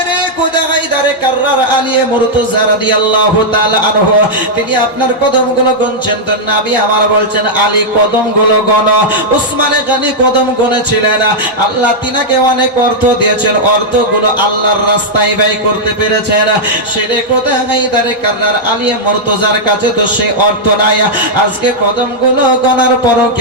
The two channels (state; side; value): normal; both; correlation -0.06